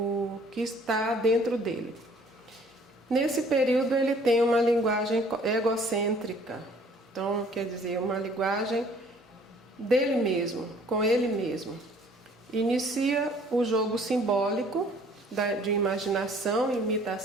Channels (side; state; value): both; normal; correlation 0.56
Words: que está dentro dele. Nesse período ele tem uma linguagem egocêntrica, então quer dizer, uma linguagem dele mesmo, com ele mesmo. Inicia o jogo simbólico de imaginação e